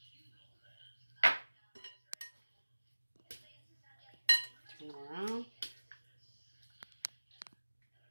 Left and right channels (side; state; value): both; inverted; correlation -1.00